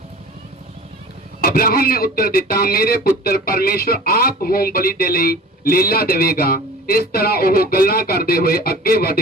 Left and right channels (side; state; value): both; normal; correlation 0.41